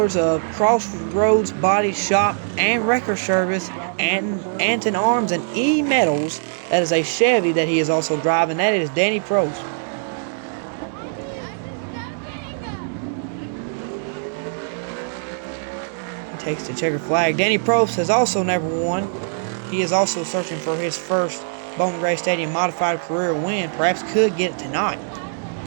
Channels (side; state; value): left; silent; 63 dB below the other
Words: of Crossroads Body Shop and Record Service, and Anton Arms and E Metals. That is a Chevy that he is also driving. That is Danny Prost. Takes the checkered flag. Danny Probst has also never won. He is also searching for his first Bowman Gray Stadium modified career win. Perhaps could get it tonight